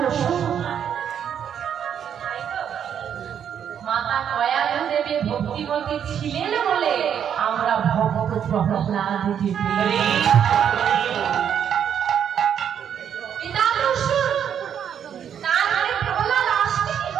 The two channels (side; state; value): left; quieter; 8.7 dB